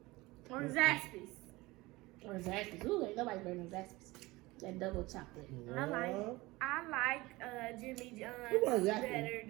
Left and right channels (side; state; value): left; quieter; 21.0 dB